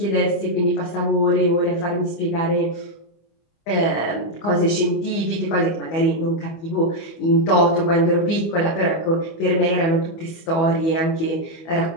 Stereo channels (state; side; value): late; right; 25 ms